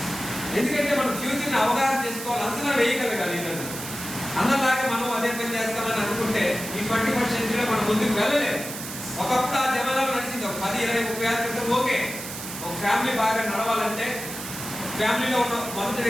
ఎందుకంటే మనం ఫ్యూచర్ని అవగాహన చేసుకోవాలి, అంచనా వేయగలగాలి. ఈరోజు అందరిలాగా మనం అదే పని చేస్తామని అనుకుంటే ఈ 21st సెంచరీలో మనం ముందుకు వెళ్ళలేదు. ఒకప్పుడు ఆ జమానాలు నడిచింది, ఒక 10, 20, 30 ఏళ్ళ క్రితం ఓకే. ఒక ఫ్యామిలీ బాగా నడవాలంటే ఫ్యామిలీలో ఉన్న మొదటి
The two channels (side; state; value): right; noise; hiss, 9 dB below the sound